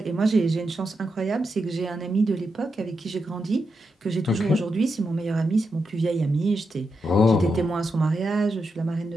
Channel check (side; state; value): both; normal; correlation 0.85